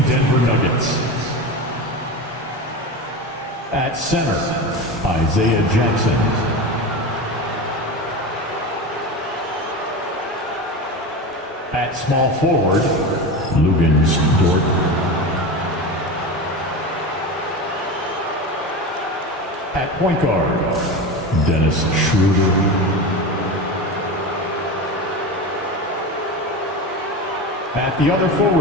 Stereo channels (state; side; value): normal; both; correlation 0.25